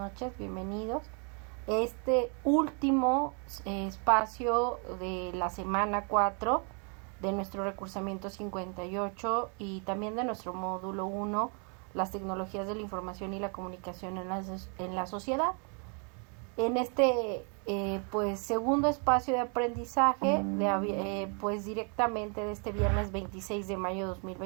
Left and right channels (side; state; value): left; quieter; 38.6 dB